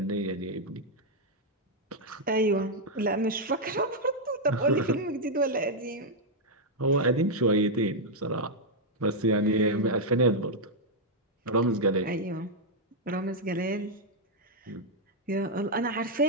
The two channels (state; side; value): normal; both; correlation -0.02